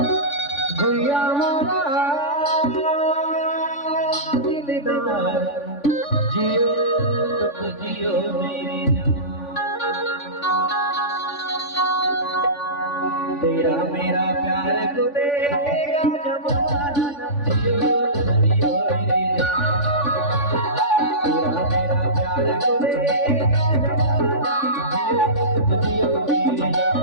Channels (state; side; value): late; right; 3.5 ms